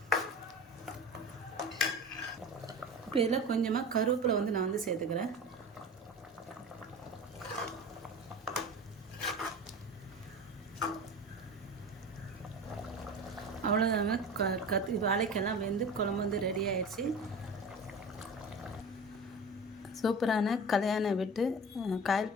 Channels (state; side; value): normal; both; correlation 0.34